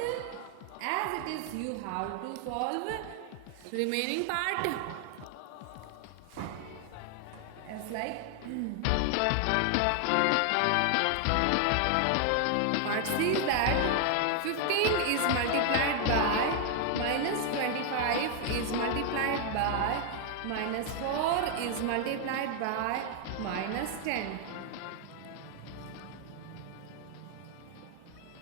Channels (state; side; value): different; both; correlation 0.00